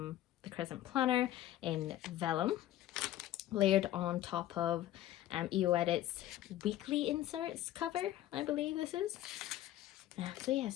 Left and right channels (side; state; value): right; quieter; 13.8 dB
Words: TheCrescentPlanner in vellum, layered on top of EO Edits weekly inserts cover, I believe this is. So yeah,